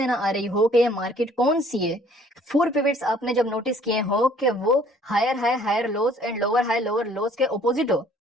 ना आ रही हो कि ये मार्केट कौन सी है, 4 पिवट्स आपने जब नोटिस किए हो कि वो higher high higher lows and lower high lower lows के ऑपोजिट हो,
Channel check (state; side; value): normal; both; correlation 0.58